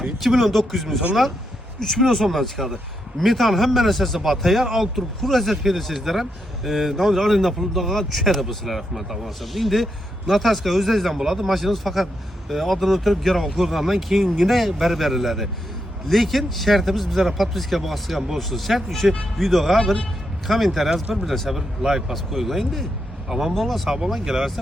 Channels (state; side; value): normal; both; correlation 0.82